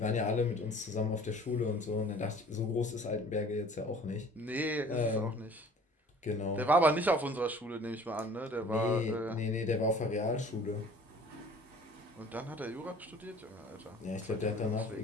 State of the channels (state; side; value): normal; both; correlation 0.50